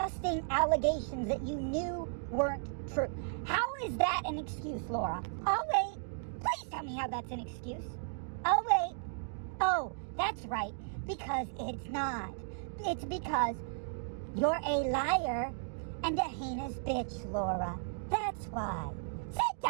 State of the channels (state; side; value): silent; left; digital silence